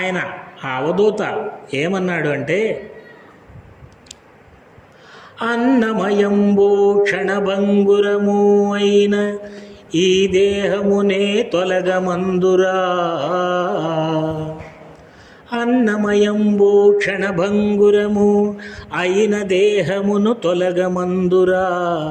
ఆ అవధూత ఏమన్నాడు అంటే, అన్నమయంబో క్షణభంగురము అయిన ఈ దేహమునే తొలగమందురా, అన్నమయంబో క్షణభంగురము అయిన దేహమును తొలగమందురా,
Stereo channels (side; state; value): both; identical; correlation 1.00